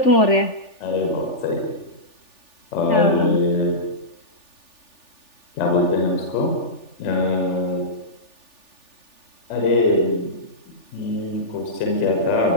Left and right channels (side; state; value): right; late; 3.4 ms